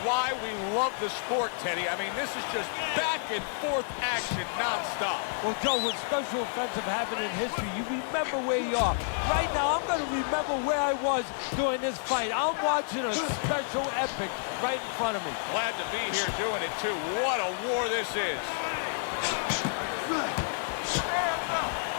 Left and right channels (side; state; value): right; silent; 55 dB below the other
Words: why we love the sport, Teddy. I mean, this is just back and forth action nonstop. Well, Joe, with special offensive happen in history, you remember where you are. Right now, I'm going to remember where I was during this fight. I'm watching a special epic right in front of me. Glad to be here doing it, too. What a war this is.